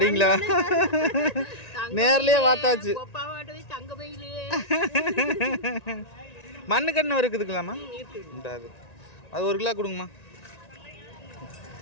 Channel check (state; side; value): late; right; 1.9 ms